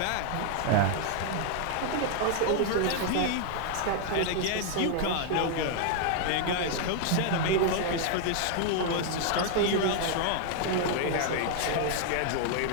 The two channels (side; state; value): both; different; correlation 0.00